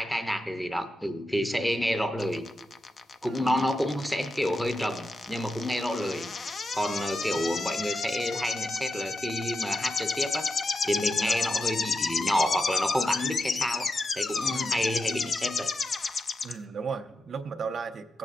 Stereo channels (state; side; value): normal; both; correlation 0.88